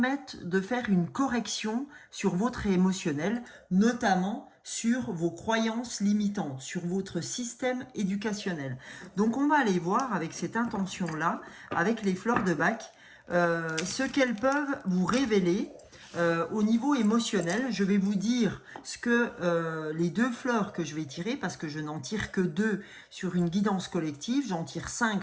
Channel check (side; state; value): both; identical; correlation 1.00